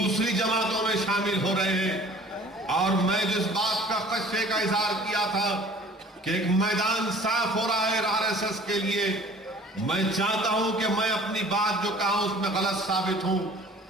जमातों में शामिल हो रहे हैं। और मैं जिस बात का खदशे का इजहार किया था कि एक मैदान साफ हो रहा है आरएसएस के लिए, मैं चाहता हूं कि मैं अपनी बात जो कहा उसमें गलत साबित हूं,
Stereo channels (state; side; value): normal; both; correlation 0.49